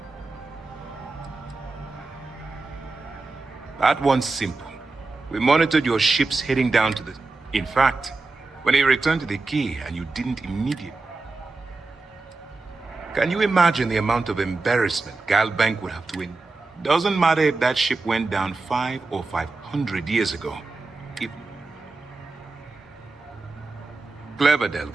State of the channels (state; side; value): quieter; left; 3.6 dB